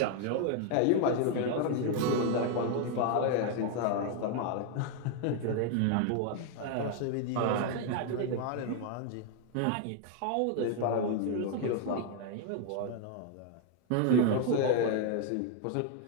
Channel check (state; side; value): different; both; correlation 0.00